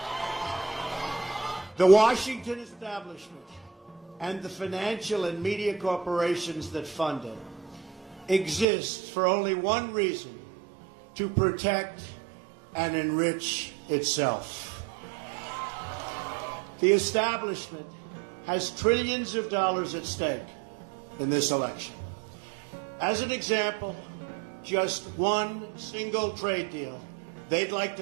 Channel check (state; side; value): drops out; left; at 8.7 s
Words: The Washington establishment and the financial and media corporations that fund it exist for only one reason: to protect and enrich itself. The establishment has trillions of dollars at stake in this election. As an example, just one single trade deal they'd like